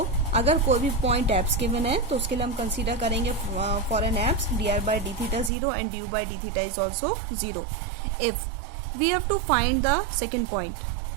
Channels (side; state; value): left; drops out; at 5.5 s